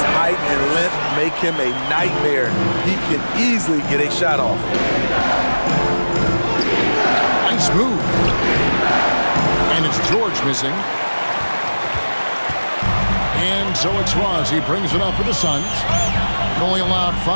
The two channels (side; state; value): both; inverted; correlation -1.00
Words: height and length make him a nightmare. He can easily get a shot off. Nice move. And it's George missing. And so it's Ross. He brings it up for the Suns. Only allowed